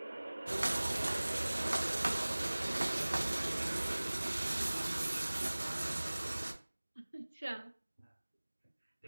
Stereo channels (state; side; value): inverted; both; correlation -1.00